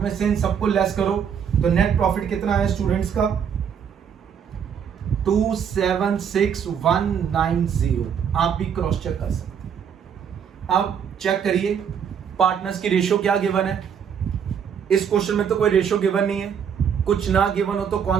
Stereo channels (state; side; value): quieter; left; 7.7 dB